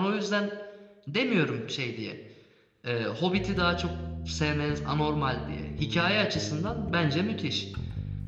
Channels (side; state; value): both; identical; correlation 1.00